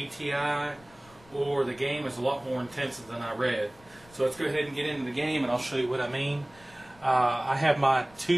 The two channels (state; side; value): noise; left; rumble, 26 dB below the sound